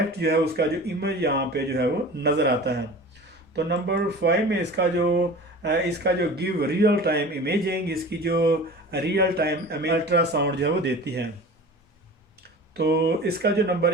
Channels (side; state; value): both; normal; correlation 0.38